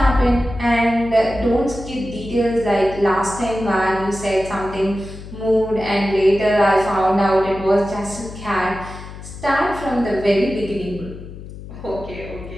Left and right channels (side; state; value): left; noise; hum, 13 dB below the sound